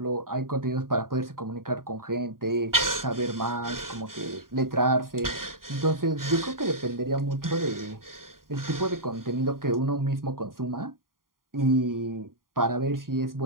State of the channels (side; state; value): left; late; 0.91 ms